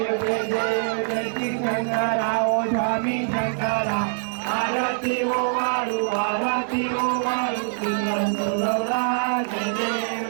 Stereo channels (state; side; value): silent; left; digital silence